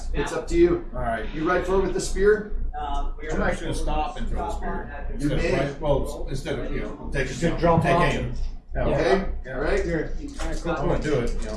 It's up to you. All right. You ride forward with the spear. I'm actually gonna stop and throw the spear. You Instead may. of well, instead of take drop off. aim. Okay. All right. I'm gonna do it.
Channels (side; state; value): both; identical; correlation 1.00